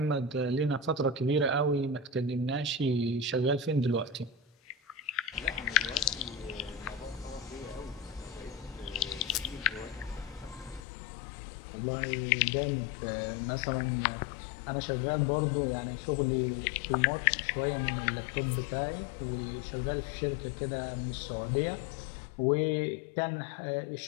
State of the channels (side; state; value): right; drops out; at 10.8 s